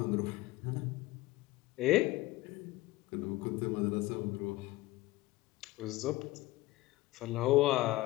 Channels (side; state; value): right; quieter; 18.3 dB